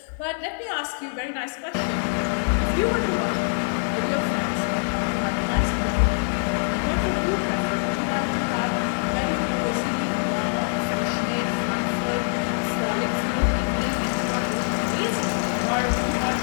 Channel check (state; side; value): silent; right; 61 dB below the other